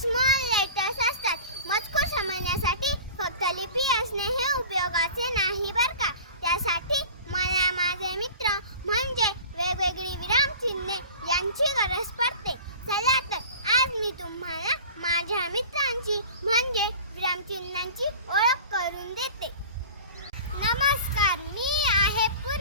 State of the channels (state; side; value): inverted; both; correlation -0.39